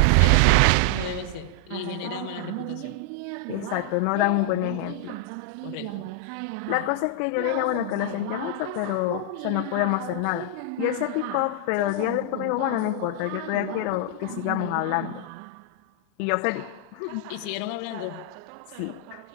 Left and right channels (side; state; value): both; different; correlation -0.01